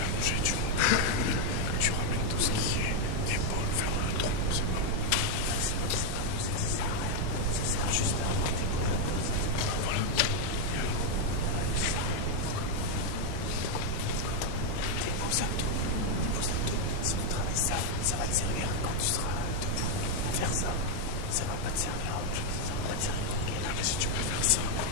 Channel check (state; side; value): different; both; correlation 0.01